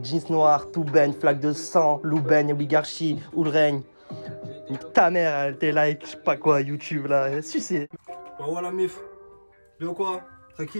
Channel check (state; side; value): inverted; both; correlation -1.00